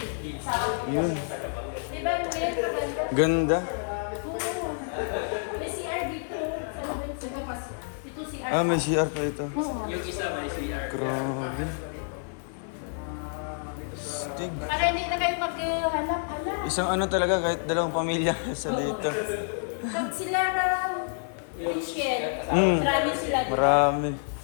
Yun. Ganda. May CR dito. Ito CR. Ah, may CR pa ito. Yung isa may CR. Grabe. Stig. Para hindi na kayo maghanap-hanap. Isang ano talaga, kahit dalawang pamilya sa dito. Pag sila parang Christian, marami sila. Marami.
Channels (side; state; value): right; silent; 56 dB below the other